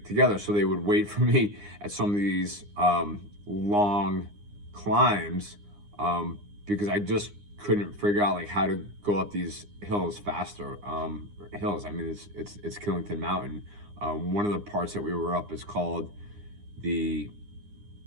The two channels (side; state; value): left; late; 9.8 ms